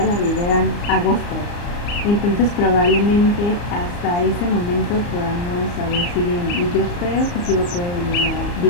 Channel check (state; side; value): late; right; 34 ms